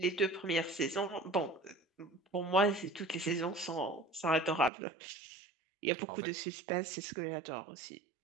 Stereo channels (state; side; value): drops out; left; at 4.7 s